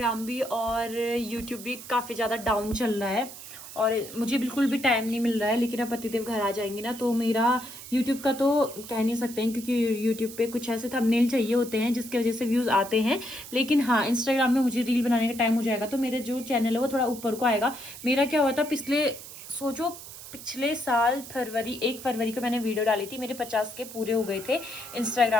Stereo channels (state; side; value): noise; right; hiss, 14 dB below the sound